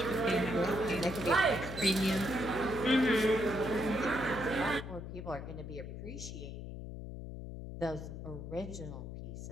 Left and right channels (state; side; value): noise; left; hum, 9 dB below the sound